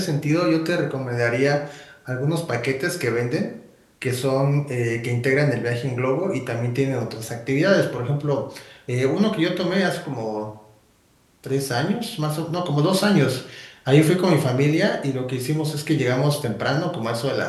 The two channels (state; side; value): identical; both; correlation 1.00